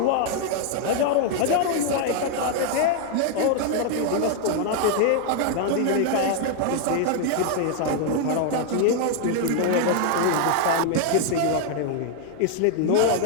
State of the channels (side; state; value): both; different; correlation 0.00